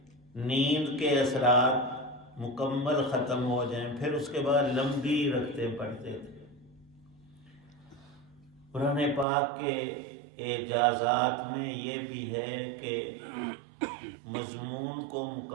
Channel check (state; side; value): drops out; left; at 9.2 s